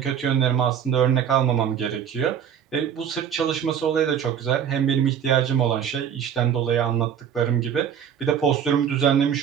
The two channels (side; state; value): left; quieter; 8.6 dB